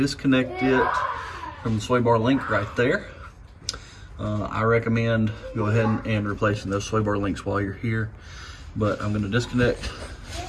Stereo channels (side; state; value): both; identical; correlation 1.00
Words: it from the sway bar link right there. I recommend go ahead and replacing those sway bar links while you're here. But I'm gonna disconnect